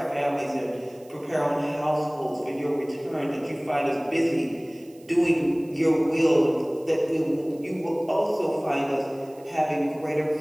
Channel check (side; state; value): right; noise; hiss, 28 dB below the sound